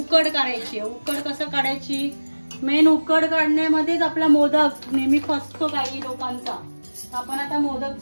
काढायची. उकड कसं काढायची, मेन उकड काढण्यामध्येच आपला मोदक नेहमी फसतो काही लोकांचा. आपण आता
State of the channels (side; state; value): both; inverted; correlation -1.00